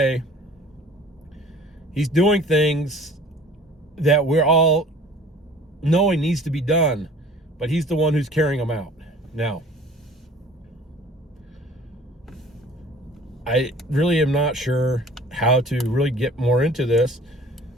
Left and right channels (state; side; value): normal; both; correlation 0.48